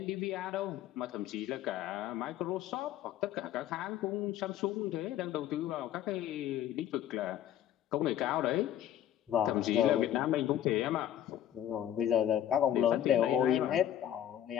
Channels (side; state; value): right; quieter; 11.2 dB